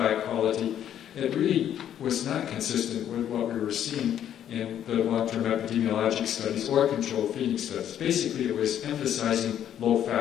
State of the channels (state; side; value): quieter; right; 10.3 dB